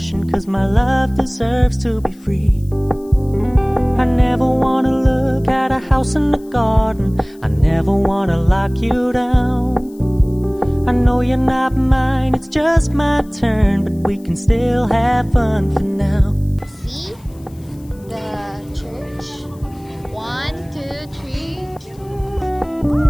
'cause my love deserves to be free. I never wanna look at a house in the garden. I never wanna lock you down. I know you're not mine, it's just my turn, but we can still have fun for now. See the church. 1, 2, 3.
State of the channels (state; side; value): noise; left; hiss, 28 dB below the sound